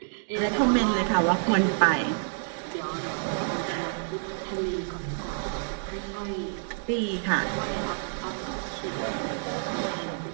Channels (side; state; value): left; silent; digital silence